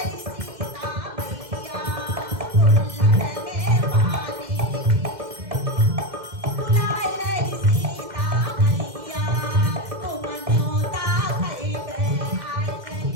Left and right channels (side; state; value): left; late; 2.1 ms